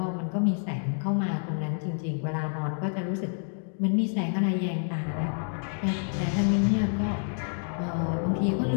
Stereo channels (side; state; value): right; silent; 57 dB below the other